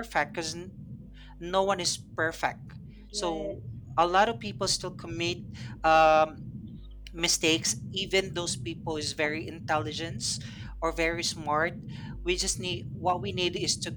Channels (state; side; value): identical; both; correlation 1.00